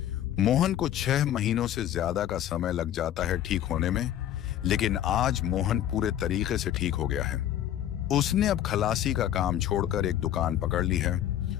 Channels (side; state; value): right; quieter; 11.4 dB